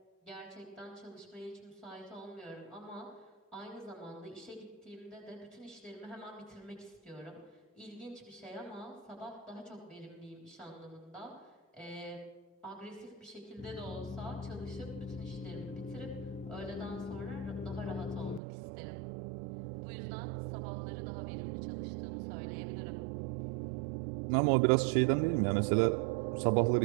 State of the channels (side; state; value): left; drops out; at 18.4 s